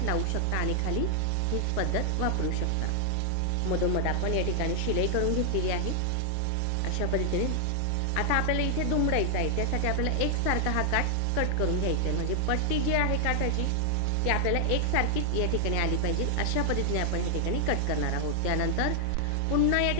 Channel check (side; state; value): both; different; correlation 0.00